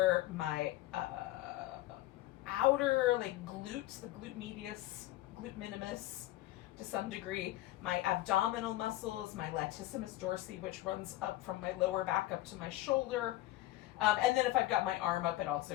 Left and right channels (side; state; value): right; quieter; 16.2 dB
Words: my outer like glutes, the glute medius, glute minimus to some degree, my abdominal muscles, my latissimus dorsi, which runs up from my lower back up to my shoulder. And then if I've got my arm up, it also